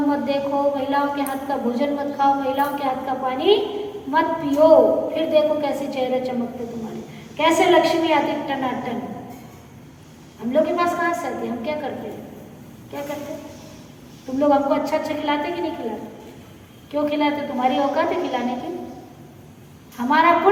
मत देखो, महिलाओं के हाथ का भोजन मत खाओ, महिलाओं के हाथ का पानी मत पियो। फिर देखो कैसे चेहरे चमकते तुम्हारे, कैसे लक्ष्मी आती टनाटन। हम लोग के पास कहाँ से आती? हम क्या करते हैं? क्या करते? तुम लोग हमको अच्छा अच्छा खिलाते कि नहीं खिलाते? क्यों खिलाते? तुम्हारी औकात है खिलाने की। हमारा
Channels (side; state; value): both; identical; correlation 1.00